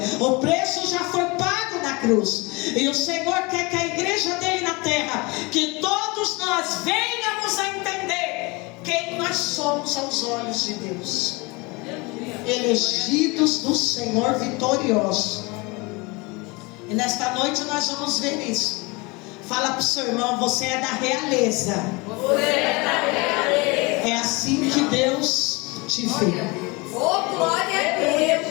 O preço já foi pago na cruz. E o Senhor quer que a igreja dele na terra, que todos nós venhamos a entender quem nós somos aos olhos de Deus. Elegidos do Senhor, vitoriosos. E nesta noite nós vamos ver isso. Fala para o seu irmão: você é da realeza. Você é da realeza. É assim que Deus te vê. Oh, glória a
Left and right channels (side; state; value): right; quieter; 26.2 dB